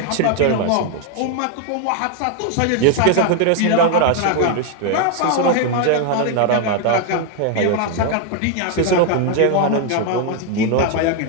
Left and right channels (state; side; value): different; both; correlation 0.01